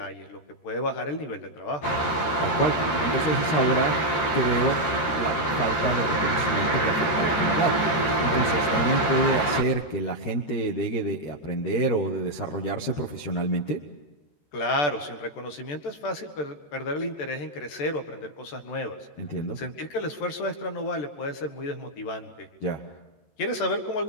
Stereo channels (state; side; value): late; right; 13 ms